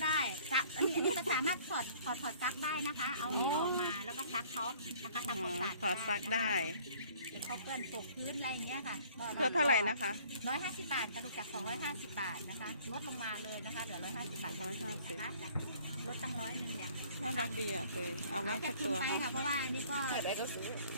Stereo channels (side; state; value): both; inverted; correlation -0.55